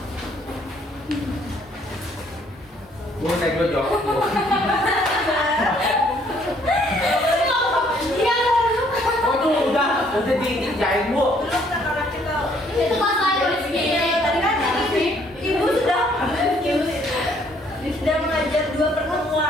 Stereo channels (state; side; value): normal; both; correlation 0.64